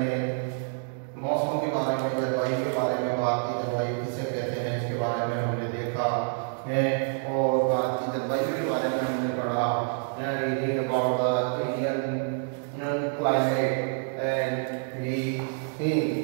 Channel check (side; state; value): left; silent; 60 dB below the other